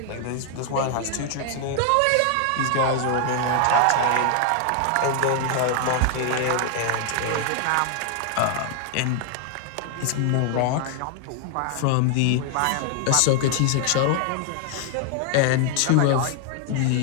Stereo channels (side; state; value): both; different; correlation 0.00